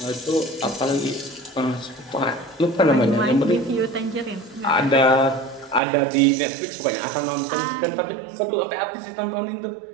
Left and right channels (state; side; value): drops out; left; at 5.8 s